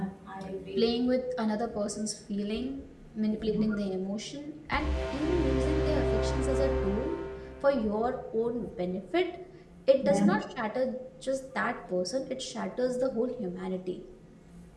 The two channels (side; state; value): both; identical; correlation 1.00